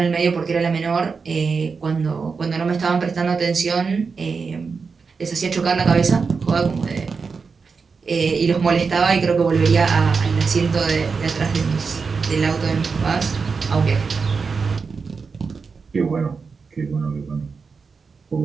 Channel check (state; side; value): quieter; left; 5.1 dB